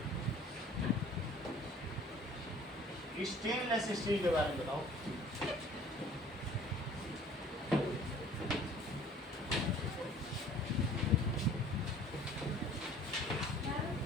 स्टेनलेस स्टील के बारे में बताओ.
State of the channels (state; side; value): normal; both; correlation 0.51